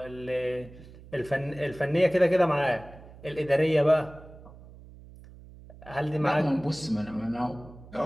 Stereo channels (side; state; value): right; noise; hum, 19 dB below the sound